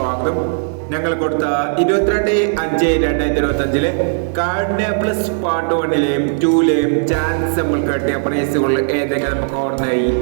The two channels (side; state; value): left; silent; digital silence